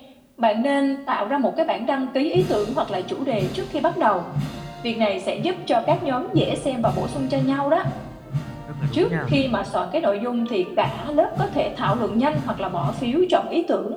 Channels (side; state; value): both; identical; correlation 1.00